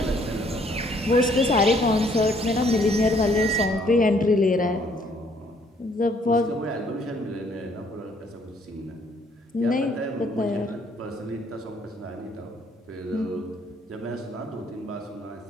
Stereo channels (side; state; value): both; normal; correlation 0.64